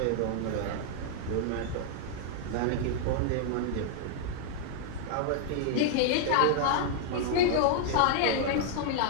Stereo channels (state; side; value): different; both; correlation -0.01